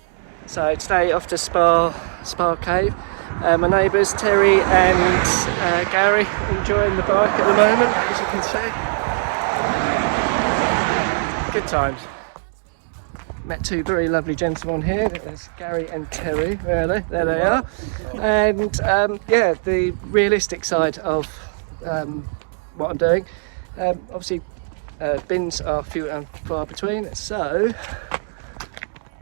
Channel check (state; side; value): silent; left; digital silence